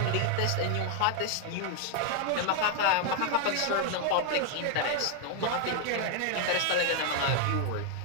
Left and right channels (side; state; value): both; different; correlation 0.00